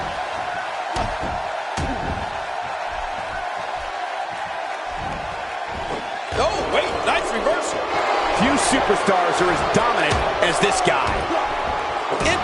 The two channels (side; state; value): both; identical; correlation 1.00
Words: Oh, wait, nice reversal. Few superstars are as dominant as this guy.